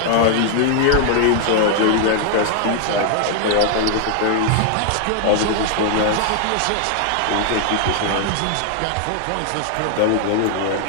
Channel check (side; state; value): both; different; correlation 0.00